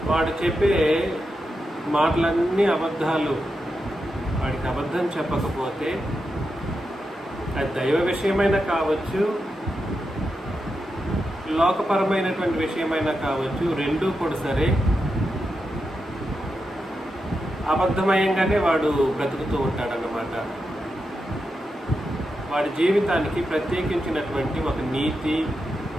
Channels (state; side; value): normal; both; correlation 0.87